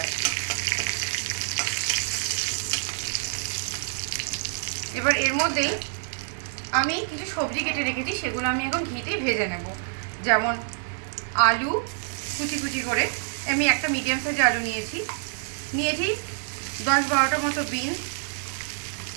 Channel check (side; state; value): left; silent; digital silence